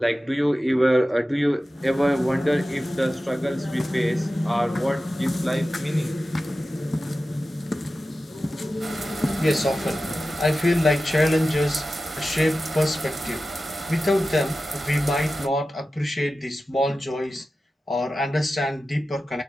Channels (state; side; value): normal; both; correlation 0.94